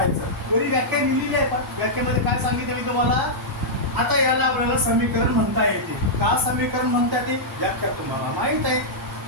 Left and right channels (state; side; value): normal; both; correlation -0.09